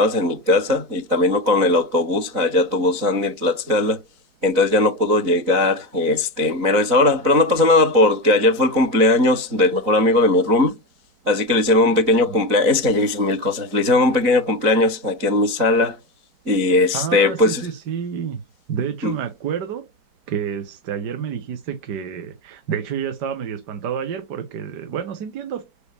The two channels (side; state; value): left; late; 4.0 ms